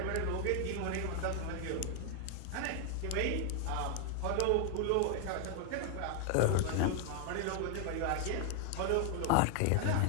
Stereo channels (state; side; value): different; both; correlation 0.00